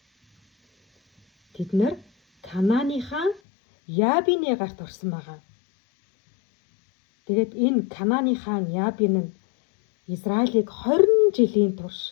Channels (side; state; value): right; drops out; at 3.4 s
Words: Тэд нар Канааны хаан Ябины гарт орсон байгаа. Тэгээд энэ Канааны хаан Ябин нь Израилийг 20 жилийн турш